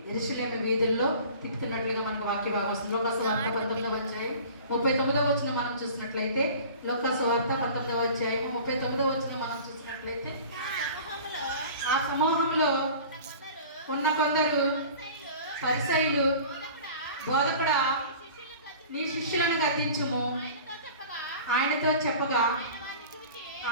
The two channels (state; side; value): inverted; both; correlation -0.42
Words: యెరూషలేము వీధుల్లో తిప్పుతున్నట్లుగా మనకు వాక్య భాగం వస్తుంది. లోకాసు వార్త 19వ అధ్యాయం 39వ వచనం మనం చూసినట్లయితే, లోకాసు వార్త 19వ అధ్యాయం 39వ వచనం మనం చూసినట్లయితే, ఆ సమూహంలో ఉన్న కొందరు పరిసయ్యులు, బోధకుడా నీ శిష్యులను గద్దించుము ఆయనతో చెప్పగా,